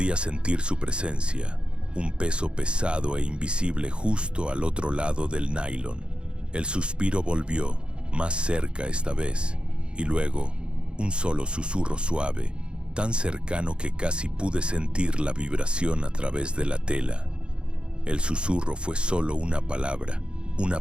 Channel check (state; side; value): late; left; 0.054 ms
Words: sentir su presencia, un peso pesado e invisible justo al otro lado del nylon. El suspiro volvió, más cerca esta vez, y luego un solo susurro suave, tan cercano que casi pude sentir la vibración a través de la tela. El susurro fue solo una palabra